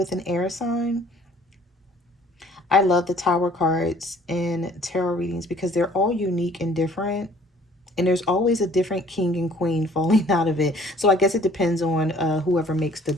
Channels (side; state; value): both; normal; correlation 0.55